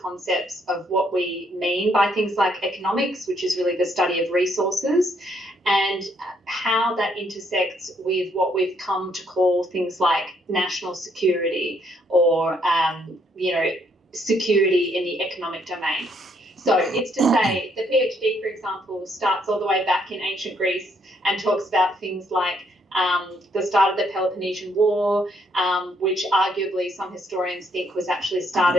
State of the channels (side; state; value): both; normal; correlation 0.70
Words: of what we mean by things like economics, which is really the study of resources, and how that intersects with what we've come to call things like national security or, security in the economic domain. So it's to say the PhD, for example, starts all the way back in ancient Greece and talks about things like the start of the Peloponnesian War, which arguably some historians think was actually